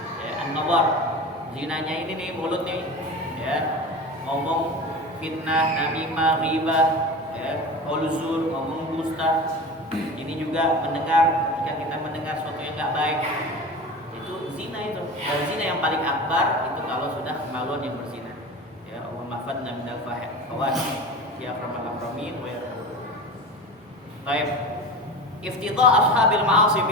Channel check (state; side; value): normal; both; correlation 0.31